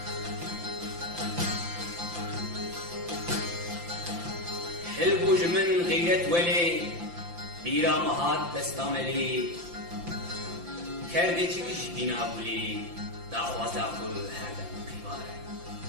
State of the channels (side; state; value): left; late; 5.8 ms